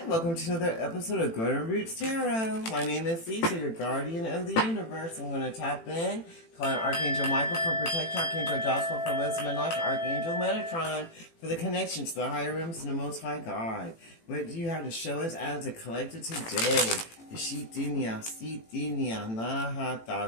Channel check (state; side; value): late; right; 18 ms